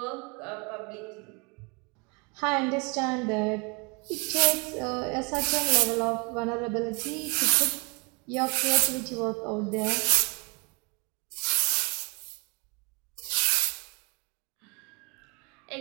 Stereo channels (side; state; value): left; quieter; 32.1 dB